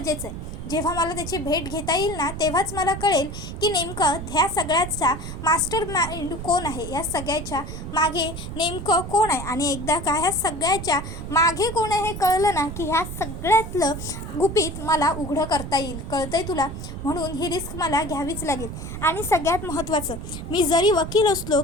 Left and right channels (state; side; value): noise; right; rumble, 8 dB below the sound